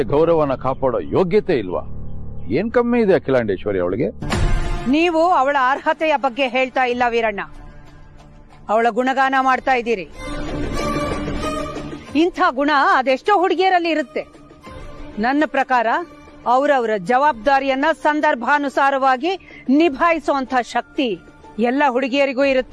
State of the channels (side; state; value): both; identical; correlation 1.00